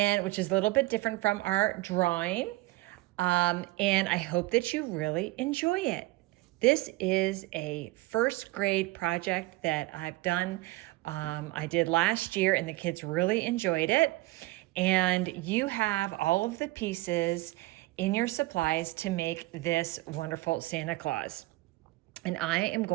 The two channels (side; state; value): left; quieter; 19.9 dB